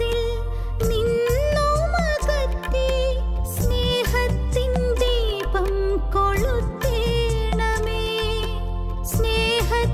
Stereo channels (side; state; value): both; identical; correlation 1.00